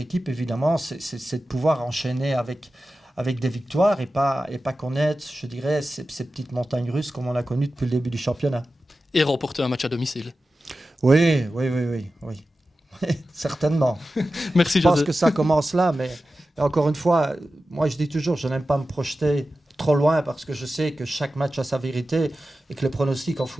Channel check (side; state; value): both; normal; correlation 0.93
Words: évidemment, c'est de pouvoir enchaîner avec des victoires et pas connaître, je dirais, ces petites montagnes russes comme on a connues depuis le début du championnat. Et remporter un match à domicile. Oui. Certainement. Merci, Je pense José. que ça commence là, mais encore une fois, moi je dis toujours, je n'aime pas me projeter trop loin parce que je sais que chaque match a sa vérité et que les pronostics en